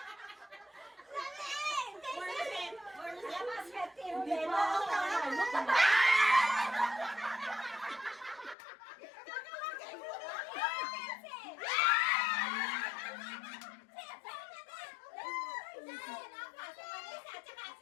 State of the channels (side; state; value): right; drops out; at 8.6 s